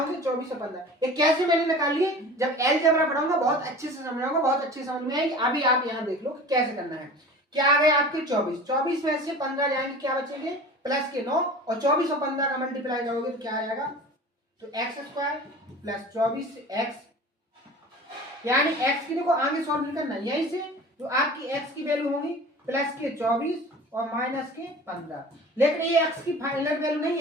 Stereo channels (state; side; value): normal; both; correlation 0.39